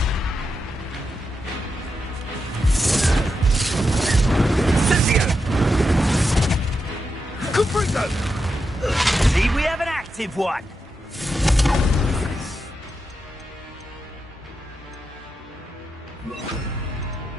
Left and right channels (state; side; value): normal; both; correlation 0.86